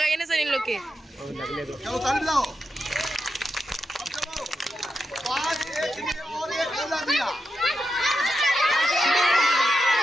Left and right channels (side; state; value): both; normal; correlation 0.87